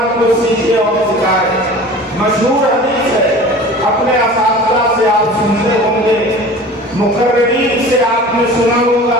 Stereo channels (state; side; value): normal; both; correlation 0.40